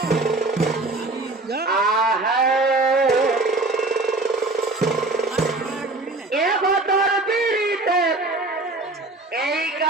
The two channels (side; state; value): left; quieter; 3.1 dB